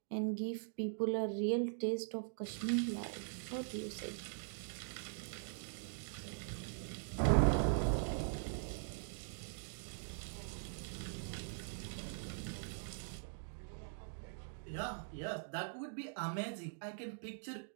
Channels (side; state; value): left; silent; digital silence